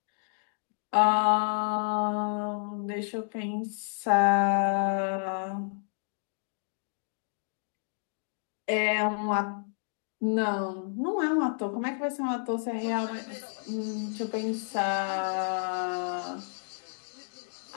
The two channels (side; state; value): right; silent; digital silence